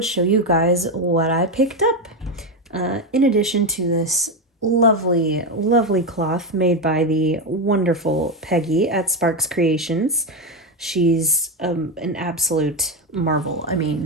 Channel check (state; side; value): normal; both; correlation 0.11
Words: show you guys what I picked up. In addition to this lovely cloth made by the wonderful Peggy at Sparks Creations. She's an absolute marvel. I